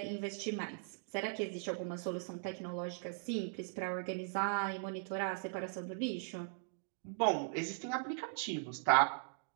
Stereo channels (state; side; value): silent; left; digital silence